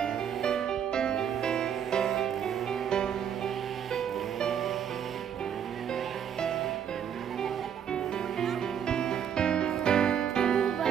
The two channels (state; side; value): quieter; left; 8.6 dB